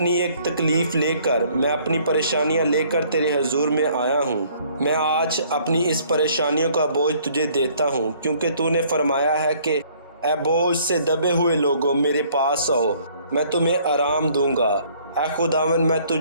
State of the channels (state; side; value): inverted; both; correlation -0.60